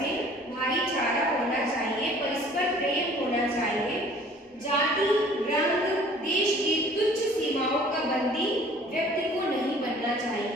में भाईचारा होना चाहिए, परस्पर प्रेम होना चाहिए। जाति, रंग, देश की तुच्छ सीमाओं का बंदी व्यक्ति को नहीं बनना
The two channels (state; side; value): normal; both; correlation 0.52